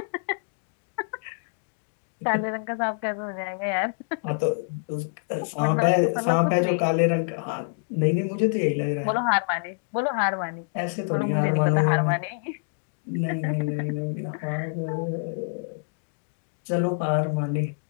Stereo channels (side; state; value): right; silent; digital silence